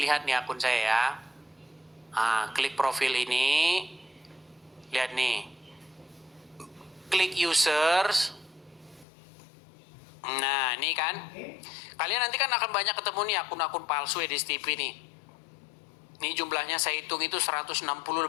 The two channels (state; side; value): drops out; right; at 9.1 s